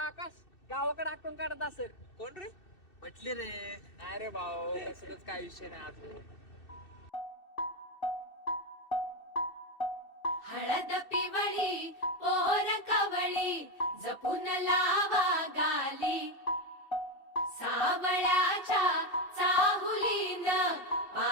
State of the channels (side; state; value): right; late; 2.6 ms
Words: आकाश गावाकडे आटून काढत असेल. कोण रे? म्हटले रे. अरे भाऊ कसलंच काय विषय नाही अजून. हळद पिवळी पोर कवळी जपून लावा गाली सावळ्याच्या चाहुलीन